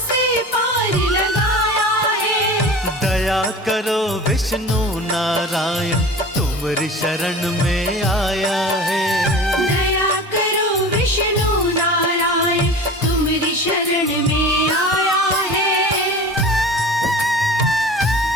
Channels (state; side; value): normal; both; correlation 0.37